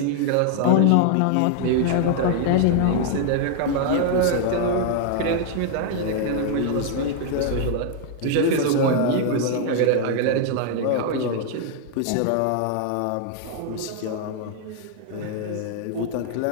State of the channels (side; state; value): both; different; correlation 0.00